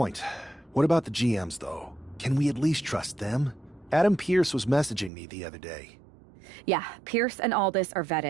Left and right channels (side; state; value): left; drops out; at 5.1 s